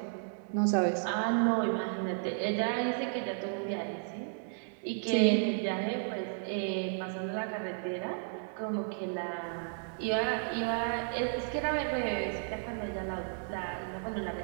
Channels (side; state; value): left; silent; digital silence